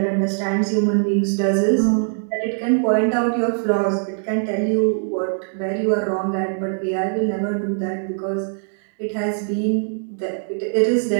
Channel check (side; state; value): left; silent; 65 dB below the other